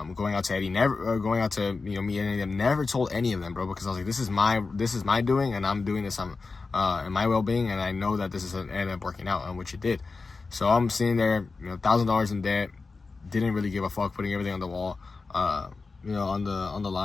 out to Eddie, going out to, me and any of them, never told any of them, bro, because I was like, this is my doing, and I'm doing this in my well-being, and I know that this is ended up working out, which it did. So I'm sitting there, $1,000 in debt, didn't really give a fuck, putting everything on the wall, on the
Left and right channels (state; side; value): quieter; right; 4.1 dB